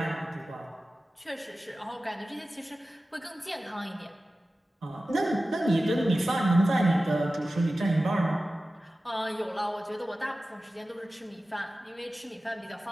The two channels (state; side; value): normal; both; correlation 0.95